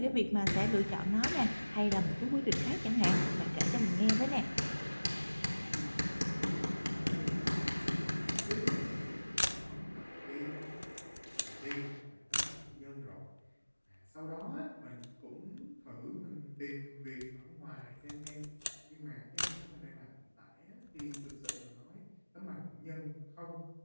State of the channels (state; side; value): inverted; both; correlation -1.00